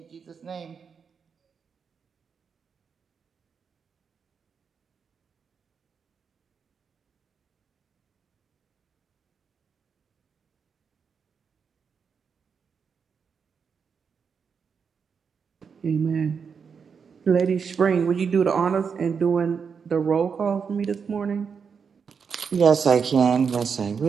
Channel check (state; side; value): quieter; left; 6.2 dB